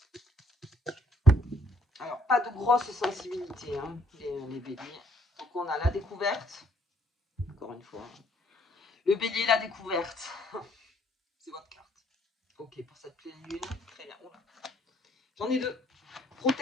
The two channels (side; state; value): both; normal; correlation 0.66